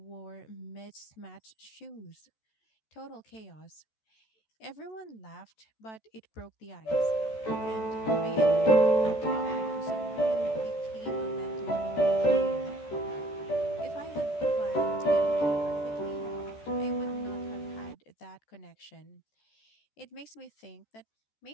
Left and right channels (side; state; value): right; late; 14 ms